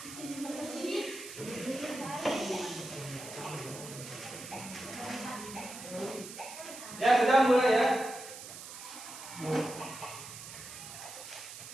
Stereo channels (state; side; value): noise; right; hiss, 12 dB below the sound